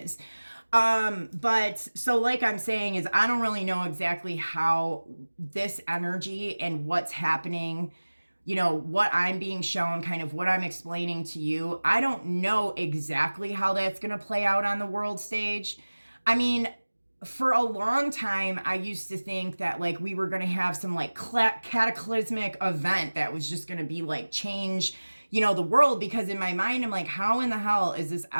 But so like I'm saying is I don't really know exactly how this energy and what's happening, what I'm being shown, kind of what I'm explaining to you. I don't know exactly how that's going to play out on the world stage. I mean, for a long time, I used to think that like we were going to have some like cataclysmic event that was just going to be like change, the world, because in my mind, I'm like, how in the hell is this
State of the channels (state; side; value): inverted; both; correlation -1.00